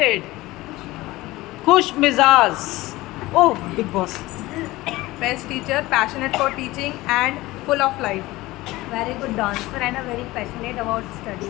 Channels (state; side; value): quieter; right; 19.0 dB